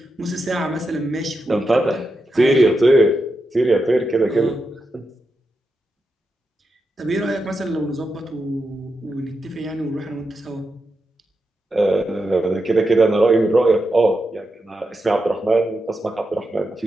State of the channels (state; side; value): normal; both; correlation 0.87